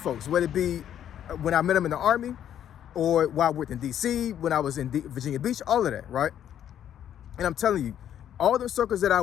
whether it be when I met them in the Army or while I worked in DC, when I was in Virginia Beach, all of that, right? And I'm telling you, all the circles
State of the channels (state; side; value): quieter; right; 10.2 dB